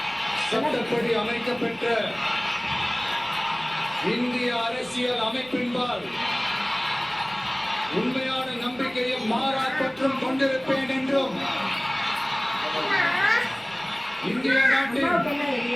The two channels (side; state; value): right; noise; rumble, 27 dB below the sound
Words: சட்டப்படி அமைக்கப்பெற்ற இந்திய அரசியல் அமைப்பின்பால் உண்மையான நம்பிக்கையும் மாறாப்பற்றும் கொண்டிருப்பேன் என்றும் இந்திய நாட்டின்